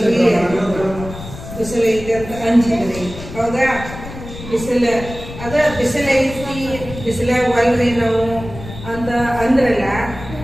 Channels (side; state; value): left; noise; rumble, 12 dB below the sound